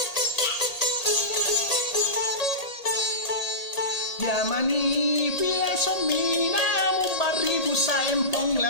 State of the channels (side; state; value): right; late; 1.8 ms